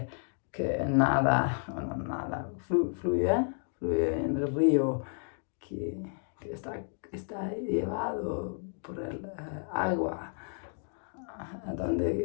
nada, fluye en el río, que está llevado por el agua a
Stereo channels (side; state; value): right; silent; 57 dB below the other